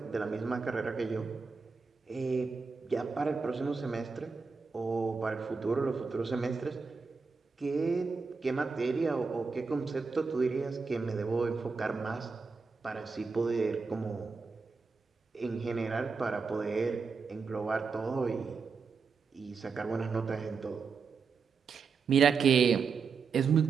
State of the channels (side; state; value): left; quieter; 5.0 dB